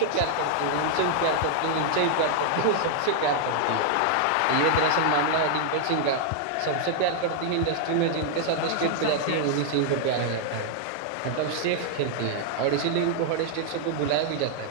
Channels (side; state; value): both; different; correlation -0.01